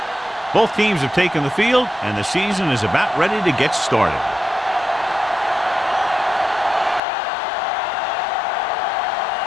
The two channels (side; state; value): right; drops out; at 7.0 s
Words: Both teams have taken the field, and the season is about ready to get started.